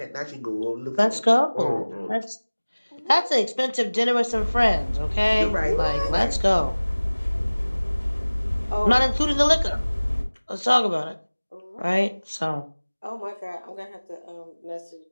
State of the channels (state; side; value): inverted; both; correlation -1.00